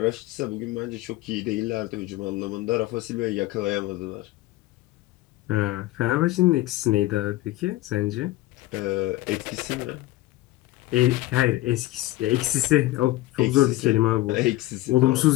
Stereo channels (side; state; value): right; quieter; 17.3 dB